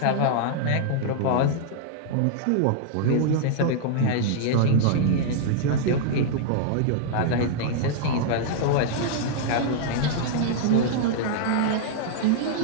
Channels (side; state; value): both; different; correlation -0.01